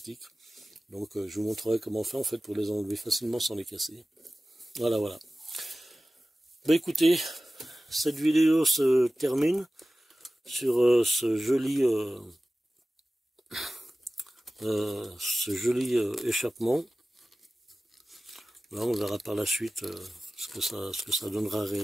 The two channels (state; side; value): normal; both; correlation 0.96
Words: Donc je vous montrerai comment faire en fait pour les enlever facilement sans les casser. Voilà, voilà. Écoutez, cette vidéo se termine sur ce joli échappement. Là, on verra par la suite ce que ça donnera